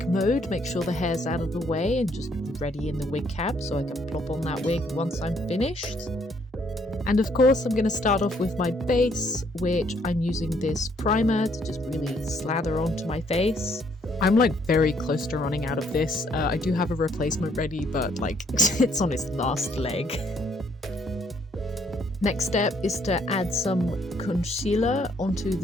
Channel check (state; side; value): normal; both; correlation 0.67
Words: mode, make sure the hair's out of the way and just ready in the wig cap so I can plop on that wig once I'm finished. And of course I'm going to start off with my base, which I'm using this primer to just really slather onto my face. I'm like very close to running out of this. I do have a replacement ready, but like it's on its last leg. Next step is to add some concealer onto